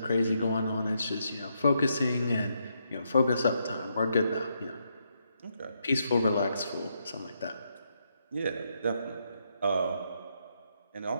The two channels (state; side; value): inverted; both; correlation -0.79